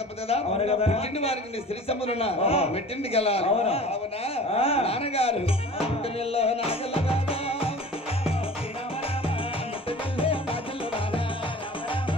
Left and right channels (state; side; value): normal; both; correlation 0.42